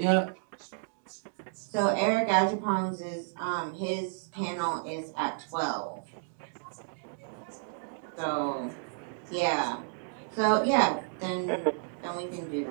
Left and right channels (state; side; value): silent; left; digital silence